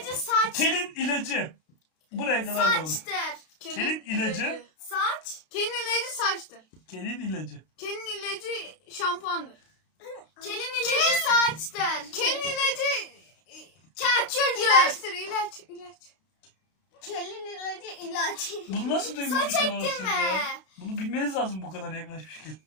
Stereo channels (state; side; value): late; right; 32 ms